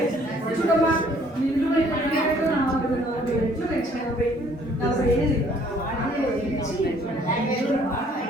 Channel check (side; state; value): both; normal; correlation 0.60